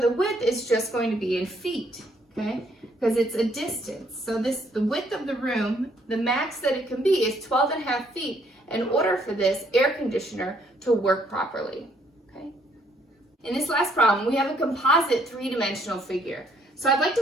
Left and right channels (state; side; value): normal; both; correlation 0.67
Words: width is just going to be in feet, okay? Because it's a distance. So the width of the room, the max that it can be is 12.5 feet in order for this air conditioner to work properly, okay? In this last problem, we have a composite three-dimensional figure. So I'd like